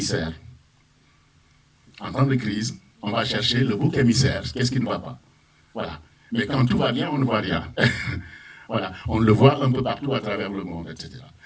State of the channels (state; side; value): identical; both; correlation 1.00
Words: En temps de crise, on va chercher le bouc émissaire. Qu'est-ce qui ne va pas? Voilà. Mais quand tout va bien, on ne voit rien. Voilà. On le voit un peu partout à travers le monde, etc.